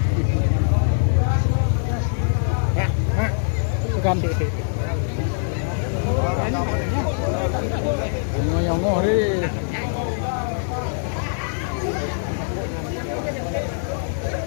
Bukan. Nyongo deh.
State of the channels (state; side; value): silent; right; digital silence